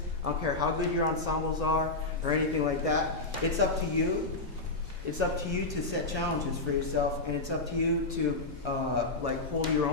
I don't care how good your ensembles are or anything like that. It's up to you. It's up to you to set challenges for yourself, and it's up to you to like hold your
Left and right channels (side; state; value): right; quieter; 3.2 dB